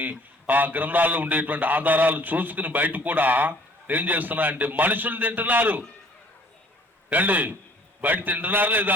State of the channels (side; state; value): both; normal; correlation 0.54